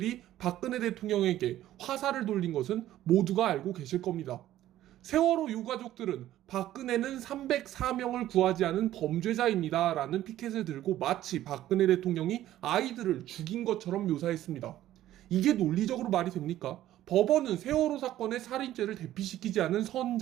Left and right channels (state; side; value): quieter; left; 13.5 dB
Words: 박근혜 대통령에게 화살을 돌린 것은 모두가 알고 계실 겁니다. 세월호 유가족들은 박근혜는 304명을 구하지 않은 범죄자입니다 라는 피켓을 들고 마치 박근혜 대통령이 아이들을 죽인 것처럼 묘사했습니다. 이게 논리적으로 말이 됩니까? 법원은 세월호 사건의 살인죄를 대피시키지 않은